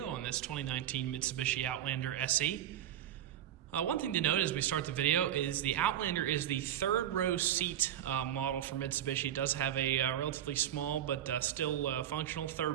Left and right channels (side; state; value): left; quieter; 11.3 dB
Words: on this 2019 Mitsubishi Outlander SE. One thing to note as we start the video is the Outlander is the third row seat model for Mitsubishi. It does have a relatively small but still functional